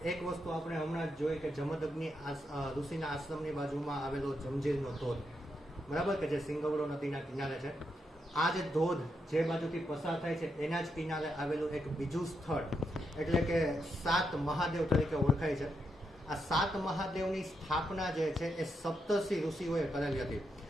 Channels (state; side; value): normal; both; correlation 0.82